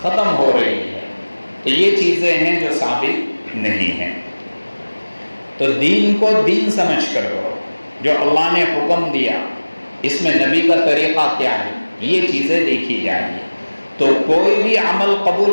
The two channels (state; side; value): inverted; both; correlation -1.00